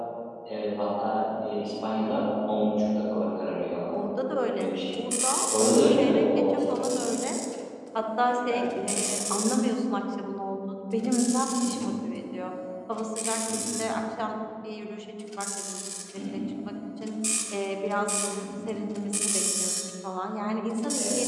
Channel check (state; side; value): identical; both; correlation 1.00